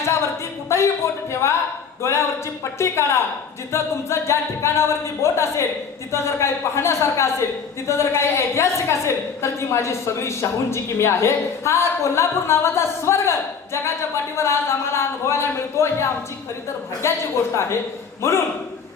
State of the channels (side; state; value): right; quieter; 6.2 dB